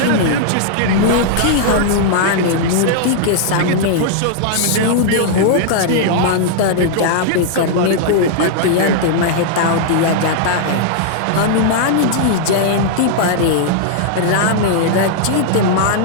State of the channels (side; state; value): both; different; correlation -0.01